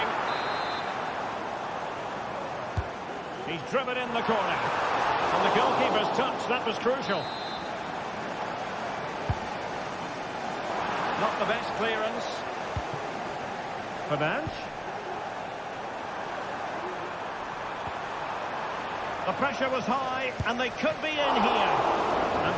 He's driven in the corner. And the goalkeeper's touch, that was crucial. Not the best clearance. Fernandes. The pressure was high, and they could be in here. And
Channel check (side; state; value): both; identical; correlation 1.00